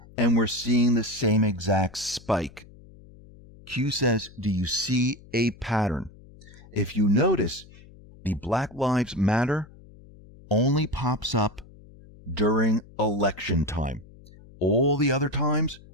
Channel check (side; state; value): left; noise; hum, 22 dB below the sound